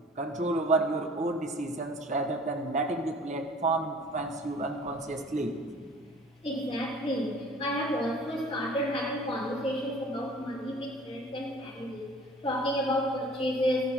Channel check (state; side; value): normal; both; correlation 0.49